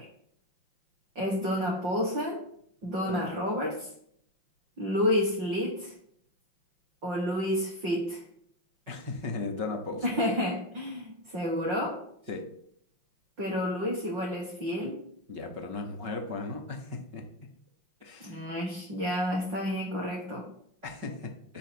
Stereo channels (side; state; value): left; late; 5.4 ms